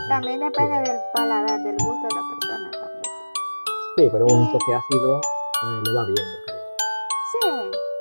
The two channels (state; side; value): inverted; both; correlation -1.00